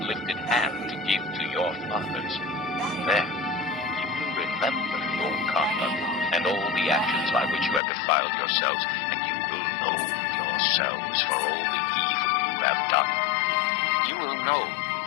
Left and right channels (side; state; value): right; drops out; at 7.8 s